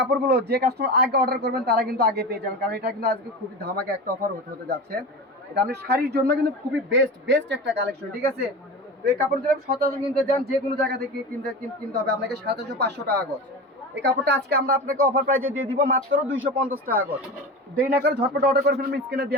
যে কাস্টমার আগে অর্ডার করবেন তারা কিন্তু আগে পেয়ে যাবেন, কারণ এটা কিন্তু আজকে খুবই ধামাকা একটা অফার হতে যাচ্ছে। এটা আপনি শাড়ির জন্য কিন্তু খুবই বেস্ট একটা কালেকশন, ঠিক আছে। তো এই কাপড় যদি আপনি সচরাচর কিনতে যান, যে কোনো জায়গা থেকে কিনতে হবে আপনাকে 750-500 টাকা গজ। এই কাপড়টা আজকে আমরা আপনাকে অফার প্রাইসে দিয়ে দিব মাত্র 250 টাকা গজ। দেরি না করে ঝটপট অর্ডার করে ফেলবেন স্ক্রিনে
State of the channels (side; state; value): both; normal; correlation 0.28